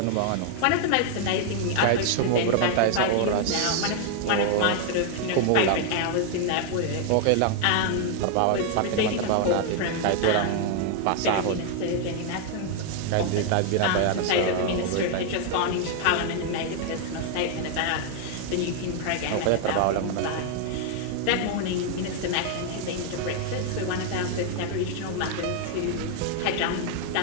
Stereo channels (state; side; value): different; both; correlation 0.00